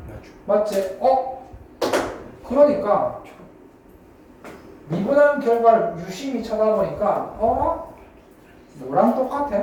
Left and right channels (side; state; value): both; identical; correlation 1.00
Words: 맞지? 그러니까 미분한 결과를 유심히 쳐다보니까 너랑